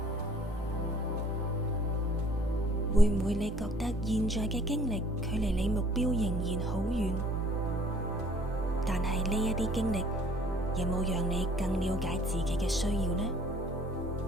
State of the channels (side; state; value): both; normal; correlation 0.56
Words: 會唔會你覺得現在嘅經歷距離你目標仍然好遠？但係呢一啲經歷有冇讓你更了解自己嘅需要呢？